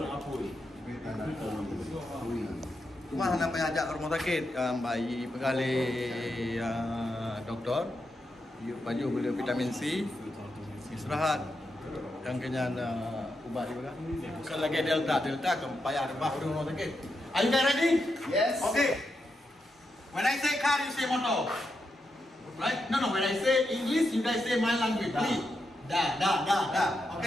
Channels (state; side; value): normal; both; correlation 0.85